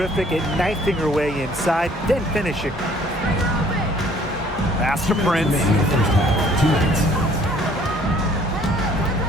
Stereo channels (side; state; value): both; normal; correlation 0.58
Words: at knifing her way inside, then finishing. Pass to Prince. Remaining in the first half. 2 minutes.